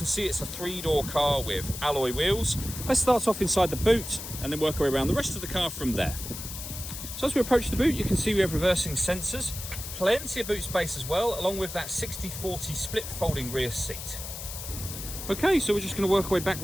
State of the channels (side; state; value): left; noise; hiss, 9 dB below the sound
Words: see it's a 3-door car with alloy wheels. Let's start off inside the boot and then work our way around the rest of the car from there. So as we approach the boot, you can see we have reversing sensors, plenty of boot space as well, along with that 60/40 split folding rear seat. Okay, so we're just going to work our way back